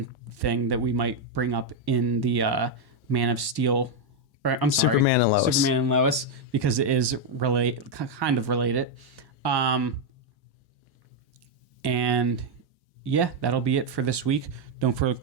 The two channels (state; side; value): normal; both; correlation 0.02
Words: thing that we might bring up in the Man of Steel. Superman and Lois, because it is kind of related. And yeah, that'll be it for this week. Don't